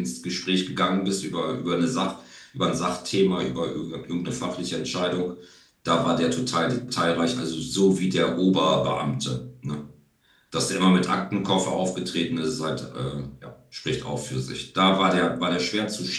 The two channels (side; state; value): both; identical; correlation 1.00